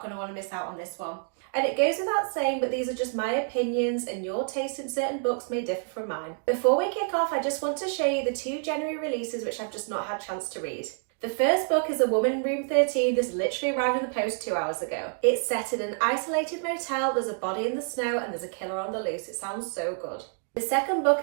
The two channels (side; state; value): left; silent; 59 dB below the other